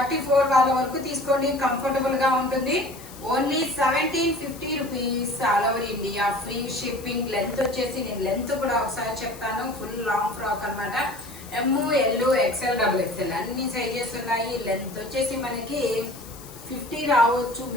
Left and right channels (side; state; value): left; noise; hiss, 18 dB below the sound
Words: వాళ్ళ వరకు తీసుకోండి, కంఫర్టబుల్ గా ఉంటుంది. Only 1750 rupees all over India, free shipping. Length వచ్చేసి నేను లెంత్ కూడా ఒకసారి చెప్తాను. ఫుల్ లాంగ్ ఫ్రాక్ అన్నమాట. ఎం, ఎల్, ఎక్స్ఎల్, డబుల్ ఎక్స్ఎల్ అన్ని సైజెస్ ఉన్నాయి. లెంత్ వచ్చేసి మనకి 50 రావచ్చు